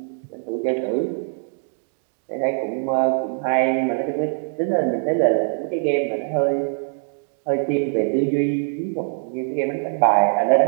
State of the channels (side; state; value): left; silent; digital silence